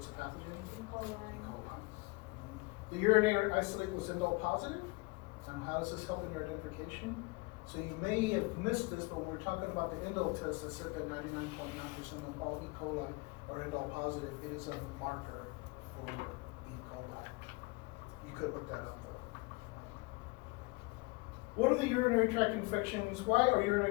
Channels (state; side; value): quieter; right; 26.4 dB